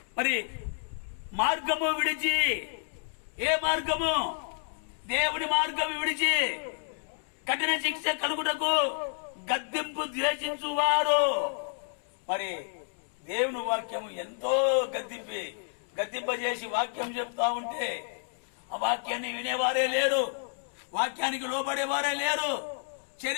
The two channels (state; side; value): silent; right; 58 dB below the other